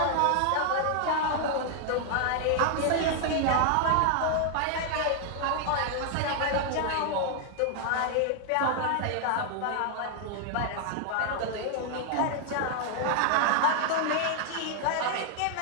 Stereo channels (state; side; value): different; both; correlation 0.00